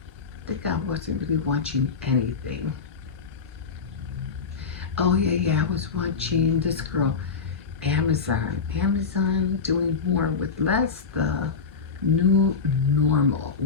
I think I wasn't really watching anything. Oh, Oh yeah, I was watching this girl, Amazon doing more with less, the new normal.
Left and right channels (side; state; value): right; quieter; 5.3 dB